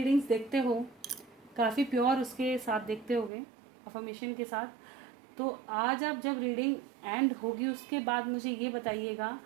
देखते हो, काफ़ी प्योर उसके साथ देखते होगे, अफर्मेशन के साथ। तो आज आप जब रीडिंग एंड होगी उसके बाद मुझे ये बताइएगा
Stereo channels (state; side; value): drops out; left; at 3.3 s